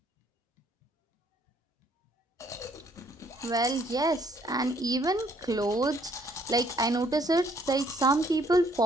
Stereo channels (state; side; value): normal; both; correlation 0.65